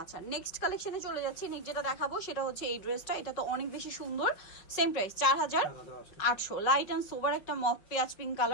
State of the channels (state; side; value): late; right; 5.4 ms